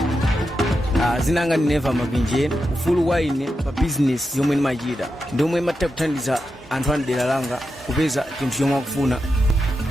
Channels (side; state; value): both; normal; correlation 0.88